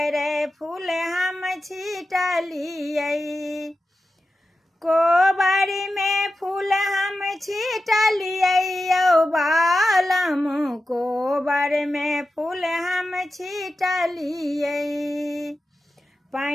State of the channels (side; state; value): both; normal; correlation 0.92